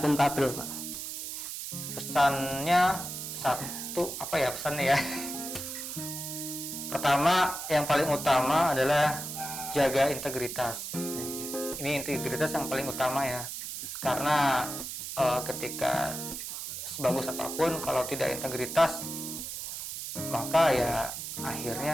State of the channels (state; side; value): noise; right; hiss, 7 dB below the sound